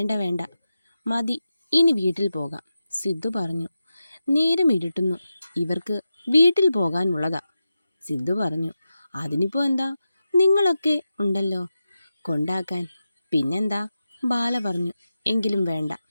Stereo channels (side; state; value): both; inverted; correlation -0.91